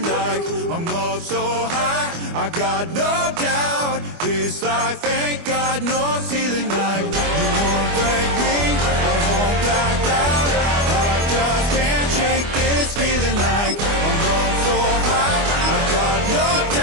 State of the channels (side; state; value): left; late; 24 ms